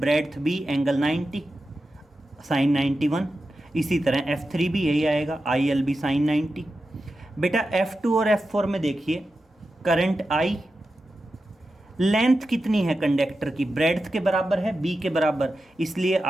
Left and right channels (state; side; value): normal; both; correlation 0.91